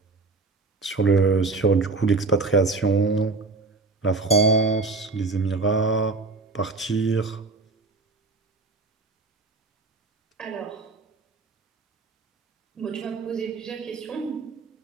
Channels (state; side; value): quieter; left; 3.7 dB